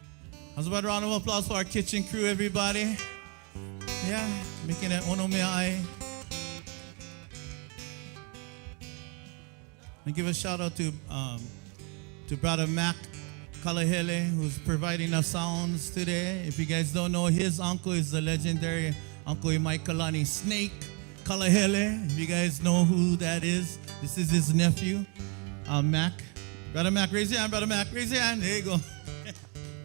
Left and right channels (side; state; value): left; quieter; 34.0 dB